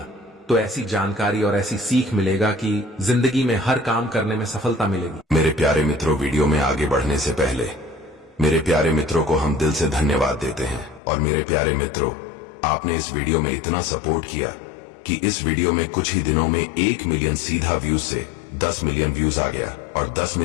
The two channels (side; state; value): right; drops out; at 11.0 s